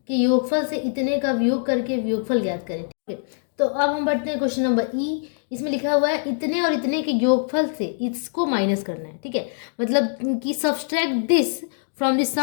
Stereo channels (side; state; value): right; silent; digital silence